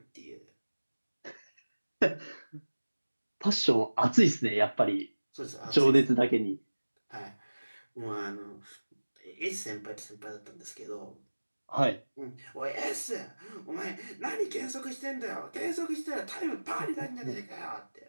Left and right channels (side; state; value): both; inverted; correlation -1.00